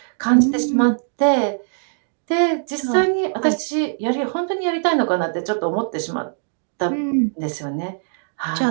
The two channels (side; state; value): left; silent; 65 dB below the other